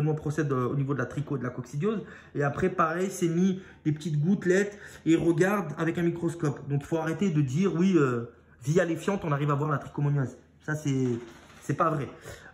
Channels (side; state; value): both; identical; correlation 1.00